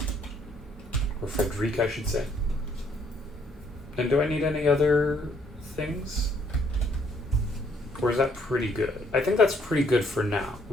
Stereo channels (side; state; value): both; normal; correlation 0.67